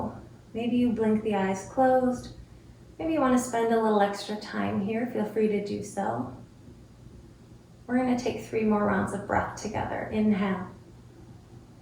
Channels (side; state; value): both; identical; correlation 1.00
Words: Maybe you blink the eyes closed. Maybe you want to spend a little extra time here. Feel free to do so. We're going to take 3 more rounds of breath together. Inhale.